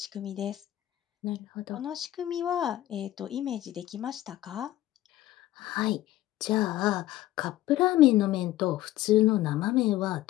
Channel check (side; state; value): right; quieter; 14.9 dB